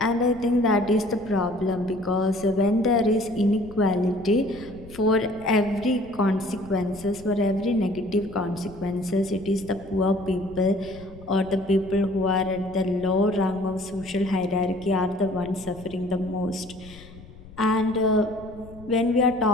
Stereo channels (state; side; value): noise; left; rumble, 19 dB below the sound